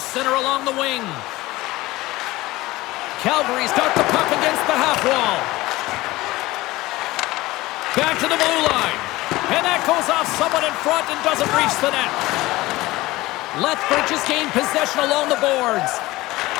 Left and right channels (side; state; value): right; quieter; 19.0 dB